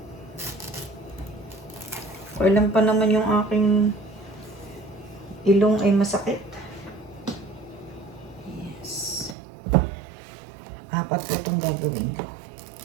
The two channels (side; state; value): left; drops out; at 9.3 s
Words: Kailan pa naman yung aking ilong ay masakit. Yes. 4 po itong gagawin ko.